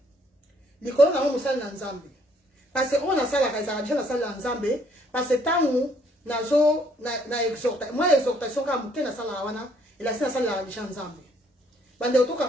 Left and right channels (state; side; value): normal; both; correlation 0.66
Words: likolo nango mosali na nzambe parce que oyo nasalaka ezalaka déjà nasali na nzambe parce que ntango nazo na exhortation kaka moke nasalaka wana elasi nasalelaka déjà nzambe bande